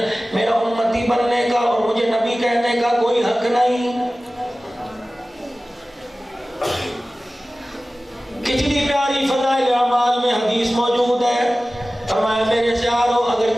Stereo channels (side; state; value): both; normal; correlation 0.97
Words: میرا امتی بننے کا اور مجھے نبی کہنے کا کوئی حق نہیں۔ کتنی پیاری فضائل اعمال میں حدیث موجود ہے۔ فرمایا میرے پیارو اگر